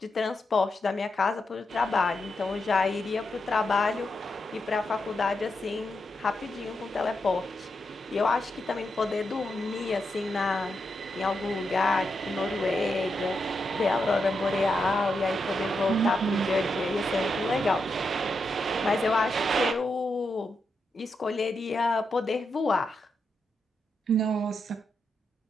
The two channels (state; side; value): normal; both; correlation 0.85